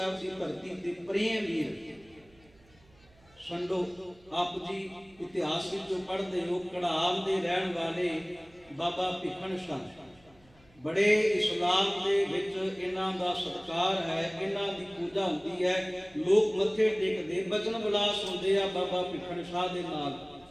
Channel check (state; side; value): noise; right; hum, 29 dB below the sound